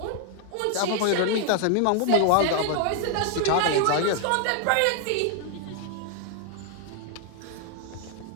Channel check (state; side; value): different; both; correlation 0.00